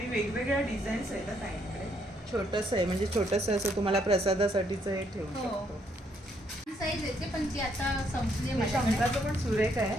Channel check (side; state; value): both; normal; correlation 0.72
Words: वेगवेगळ्या डिझाईन्स आहेत ताईंकडे. छोटंसं आहे, म्हणजे छोटंसं असं तुम्हाला प्रसादासाठीच हे ठेवू हो. शकतो. साईज येते पण ती आता संपली हे माझ्याकडे. शंकाचं पण सुरेख